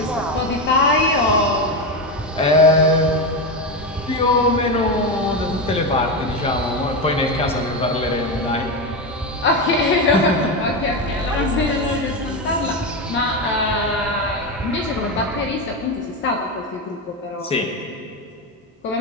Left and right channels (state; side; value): normal; both; correlation 0.14